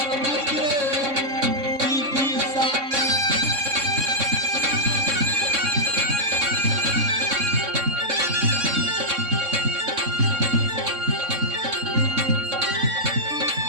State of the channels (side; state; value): left; late; 3.6 ms